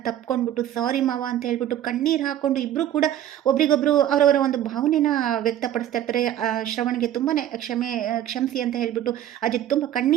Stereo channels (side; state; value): left; quieter; 11.7 dB